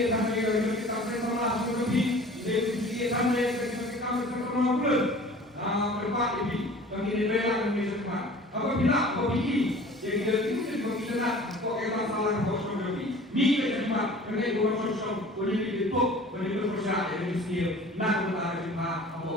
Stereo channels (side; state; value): both; normal; correlation 0.45